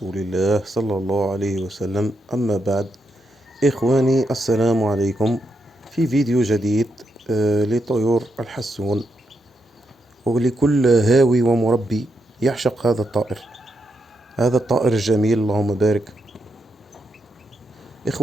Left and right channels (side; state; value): both; normal; correlation 0.82